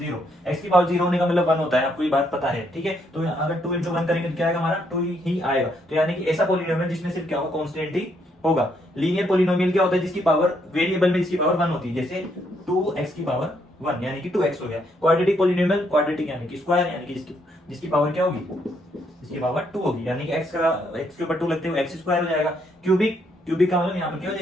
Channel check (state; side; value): normal; both; correlation 0.73